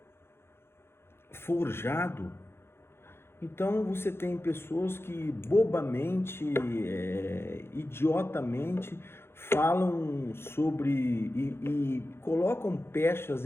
forjado. Então você tem pessoas que bobamente, idiotamente falam sobre e colocam pechas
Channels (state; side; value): late; right; 0.12 ms